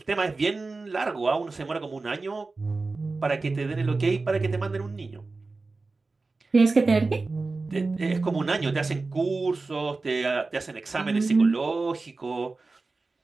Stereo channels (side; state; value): left; quieter; 3.7 dB